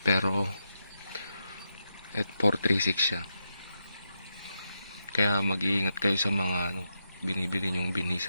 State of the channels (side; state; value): both; inverted; correlation -0.85